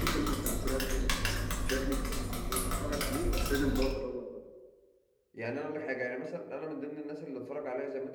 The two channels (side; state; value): both; identical; correlation 1.00